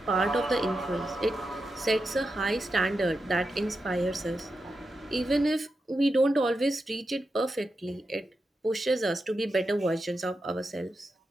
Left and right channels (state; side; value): normal; both; correlation 0.89